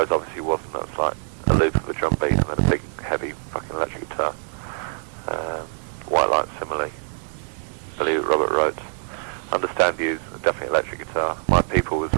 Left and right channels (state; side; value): silent; left; digital silence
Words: obviously wasn't. That's like a loop of a drum beat and then a big, heavy fucking electric guitar. White Light similarly. Believe It, Robert wrote. Understand You's definitely electric guitar. My People was